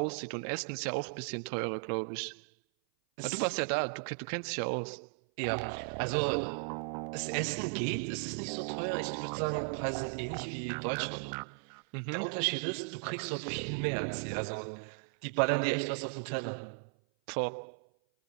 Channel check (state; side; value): silent; left; 54 dB below the other